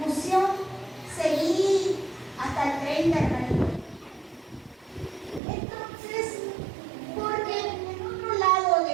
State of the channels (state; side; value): drops out; left; at 5.4 s